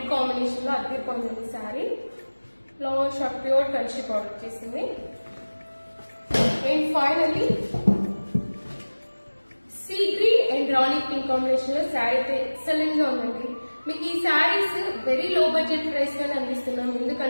combination లో అద్దరిపోయింది sari. Long short pure Kanchi border వచ్చేసింది. And finally sea green and rani pink combination లో శారీ అయితే ఎక్సలెంట్ గా ఉందండి. మీకు ఈ saris very low budget price గానే అందిస్తున్నాం,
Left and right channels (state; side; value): inverted; both; correlation -1.00